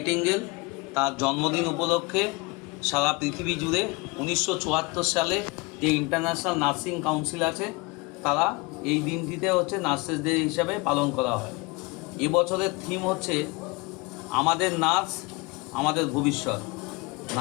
তার জন্মদিন উপলক্ষে সারা পৃথিবী জুড়ে 1974 সালে যে ইন্টারন্যাশনাল নার্সিং কাউন্সিল আছে তারা এই দিনটিতে নার্সেস ডে হিসাবে পালন করা হয়। এবছরের থিম হচ্ছে আমাদের নার্স আমাদের ভবিষ্যৎ।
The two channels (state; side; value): quieter; right; 26.4 dB